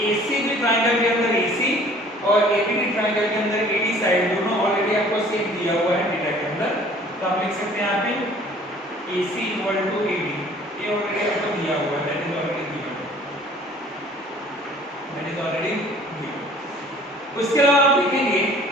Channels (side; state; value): both; normal; correlation 0.52